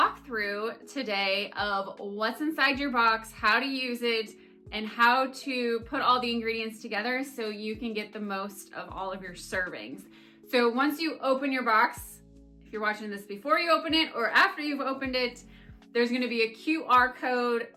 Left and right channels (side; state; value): both; identical; correlation 1.00